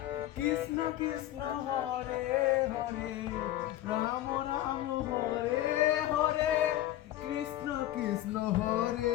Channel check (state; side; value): quieter; right; 14.0 dB